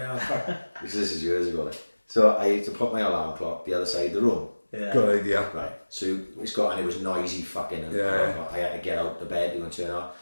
was like, fuck. This is years ago. Like. So I had to put my alarm clock the other side of the room. Yeah. Good idea. Right. So it's got, and it was noisy fucking, and I had to get out the bed to go and turn it off.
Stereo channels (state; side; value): inverted; both; correlation -1.00